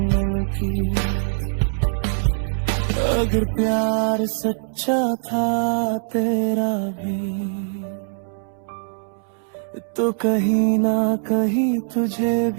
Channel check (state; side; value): silent; left; 64 dB below the other